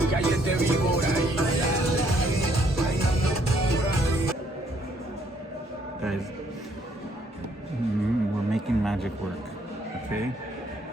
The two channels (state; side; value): normal; both; correlation 0.67